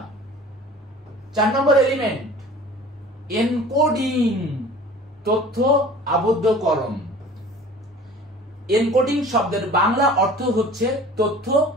4 নম্বর এলিমেন্ট এনকোডিং, তথ্য আবদ্ধকরণ। এনকোডিং শব্দের বাংলা অর্থ হচ্ছে তথ্য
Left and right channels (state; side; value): normal; both; correlation 0.44